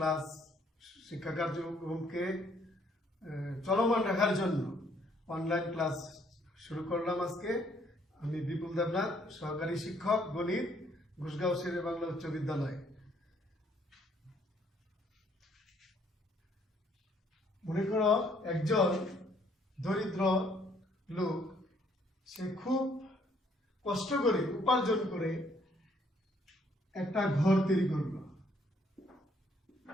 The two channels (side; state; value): both; normal; correlation 0.66